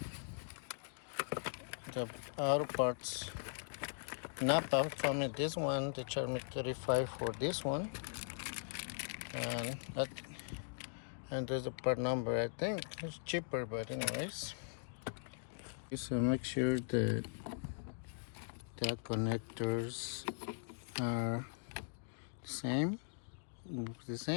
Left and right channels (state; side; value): silent; right; digital silence